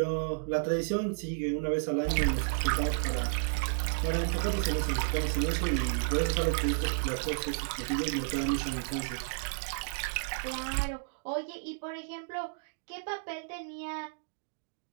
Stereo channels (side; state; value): left; silent; digital silence